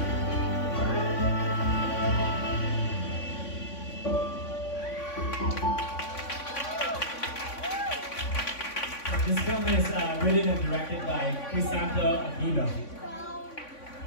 This film is written and directed by Crisanto Aquino.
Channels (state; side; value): late; right; 3.5 ms